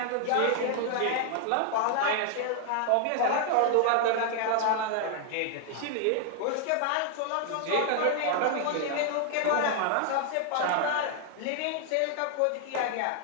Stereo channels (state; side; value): different; both; correlation 0.00